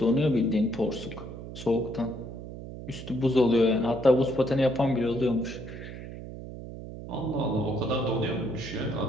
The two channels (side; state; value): right; noise; hum, 11 dB below the sound